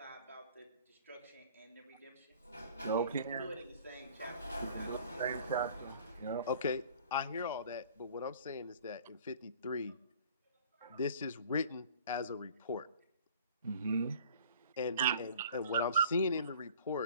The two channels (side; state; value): both; inverted; correlation -0.49